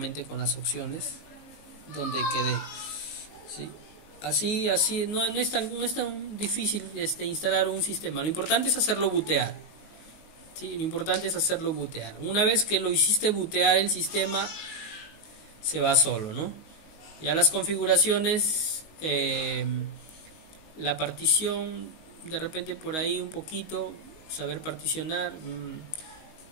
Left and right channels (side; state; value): right; late; 19 ms